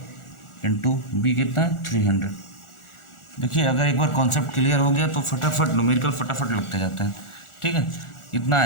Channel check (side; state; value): right; late; 1.4 ms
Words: इंटू B कितना है 300। देखिए अगर एक बार कॉन्सेप्ट क्लियर हो गया तो फटाफट न्यूमेरिकल फटाफट लगते जाते हैं। ठीक है, कितना